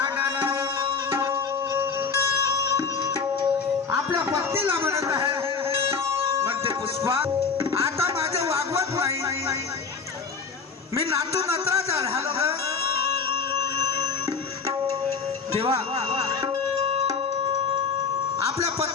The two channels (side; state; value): right; quieter; 5.3 dB